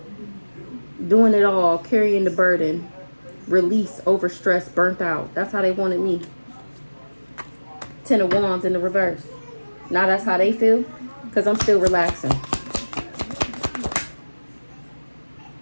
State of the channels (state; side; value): inverted; both; correlation -1.00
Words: Doing it all, carrying the burden. Release, overstressed, burnt out. That's how they wanted me. 10 of Wands in the reverse. Now that's how they feel because I'm still relaxing.